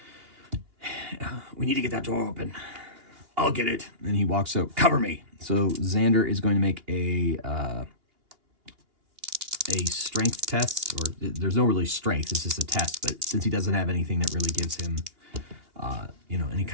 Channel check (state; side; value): late; left; 2.8 ms